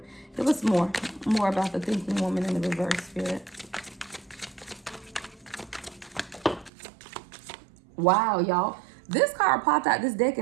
Give us more about the thinking woman in the reverse spirit. Wow, y'all. This card popped out this deck,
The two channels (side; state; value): left; drops out; at 6.7 s